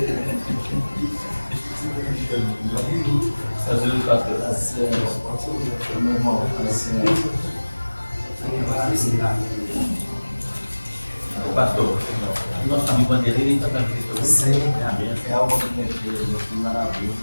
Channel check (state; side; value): inverted; both; correlation -1.00